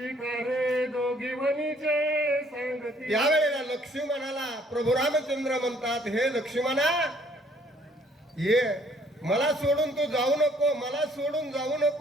दोघी वनीचे सांगती. त्यावेळेला लक्ष्मणाला प्रभू रामचंद्र म्हणतात हे लक्ष्मणा ये, मला सोडून तू जाऊ नको, मला सोडून जाऊ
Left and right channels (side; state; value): both; normal; correlation 0.62